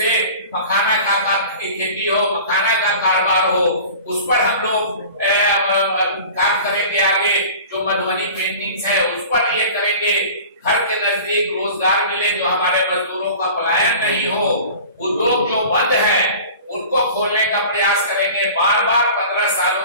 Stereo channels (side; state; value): both; inverted; correlation -0.41